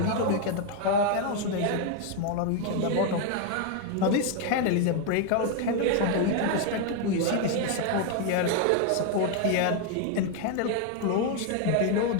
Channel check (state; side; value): different; both; correlation 0.01